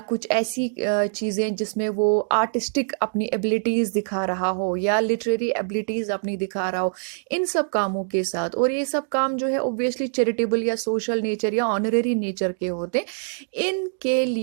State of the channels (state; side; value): silent; left; digital silence